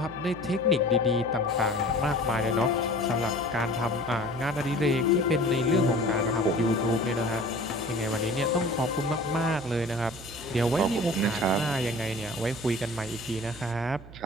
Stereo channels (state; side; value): noise; right; hum, 17 dB below the sound